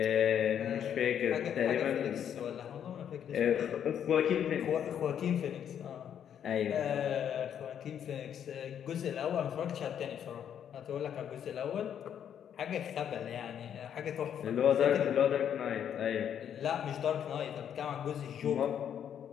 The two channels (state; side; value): quieter; right; 9.1 dB